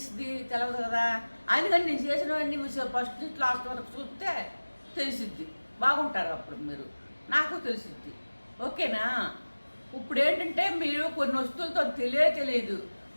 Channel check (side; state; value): both; inverted; correlation -1.00